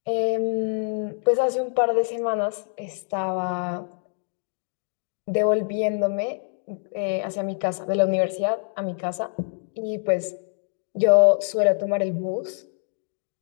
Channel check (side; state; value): right; silent; digital silence